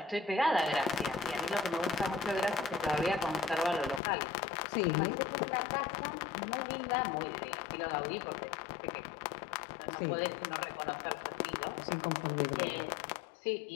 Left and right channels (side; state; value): right; drops out; at 4.0 s